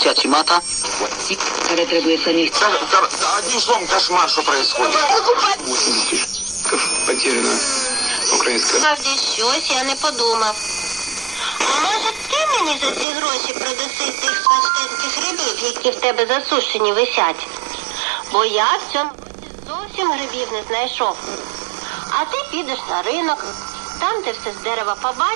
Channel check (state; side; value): drops out; left; at 13.1 s